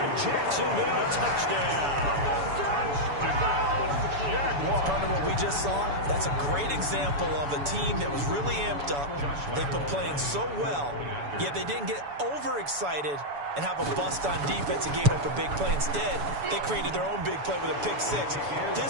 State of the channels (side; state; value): left; late; 7.0 ms